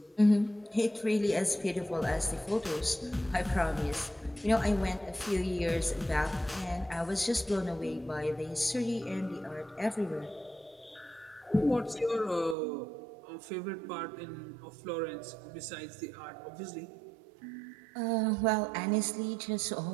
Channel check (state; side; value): drops out; left; at 12.6 s